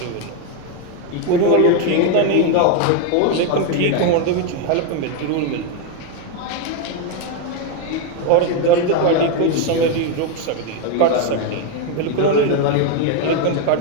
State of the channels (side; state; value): both; different; correlation 0.02